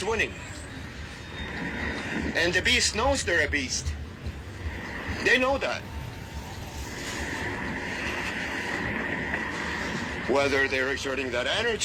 winning. And the Beast knows they're a beast. They know that. Whether they're exerting that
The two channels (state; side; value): identical; both; correlation 1.00